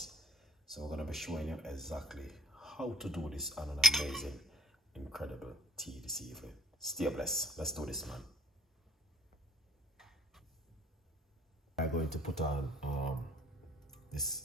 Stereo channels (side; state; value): both; normal; correlation 0.48